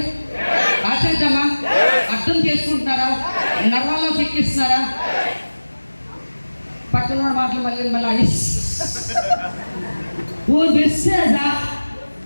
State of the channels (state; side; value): inverted; both; correlation -1.00